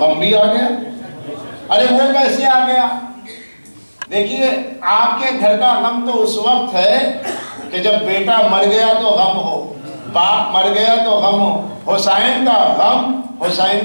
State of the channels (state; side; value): inverted; both; correlation -1.00